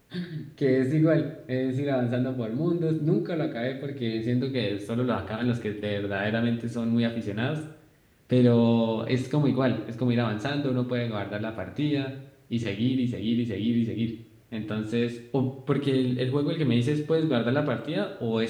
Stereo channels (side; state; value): both; identical; correlation 1.00